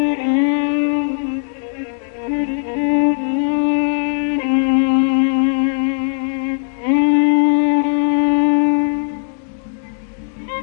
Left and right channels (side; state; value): right; silent; digital silence